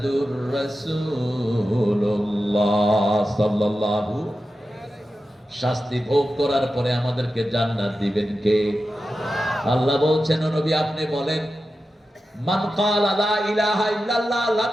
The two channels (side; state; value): both; normal; correlation 0.92